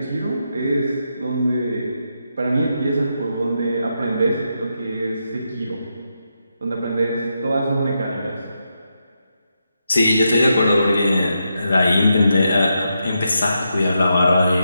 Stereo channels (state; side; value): inverted; both; correlation -0.83